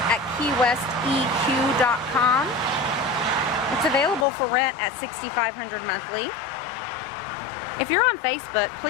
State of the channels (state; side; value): drops out; right; at 4.2 s